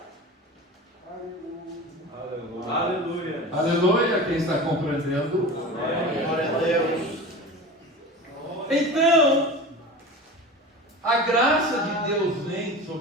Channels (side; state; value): both; normal; correlation 0.32